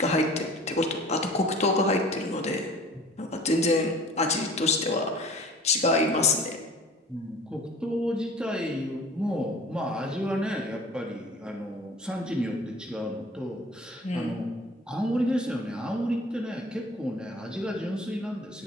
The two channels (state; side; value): normal; both; correlation 0.46